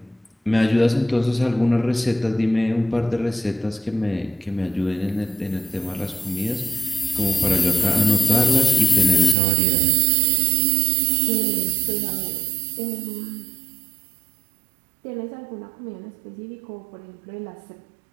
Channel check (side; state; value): left; drops out; at 9.3 s